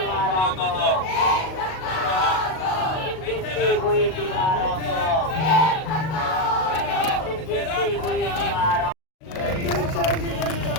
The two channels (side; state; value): right; late; 38 ms